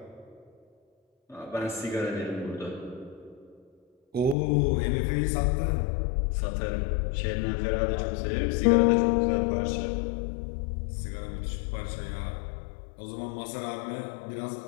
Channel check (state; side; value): drops out; right; at 4.4 s